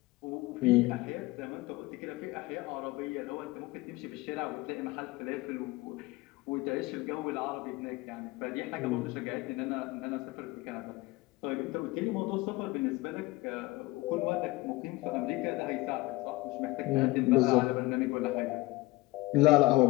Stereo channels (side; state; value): right; quieter; 21.2 dB